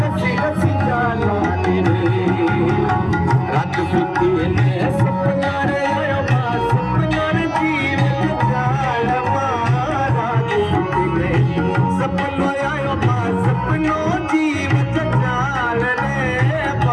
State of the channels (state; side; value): identical; both; correlation 1.00